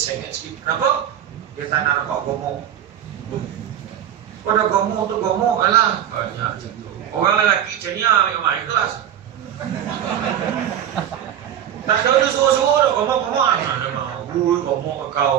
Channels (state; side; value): quieter; left; 10.3 dB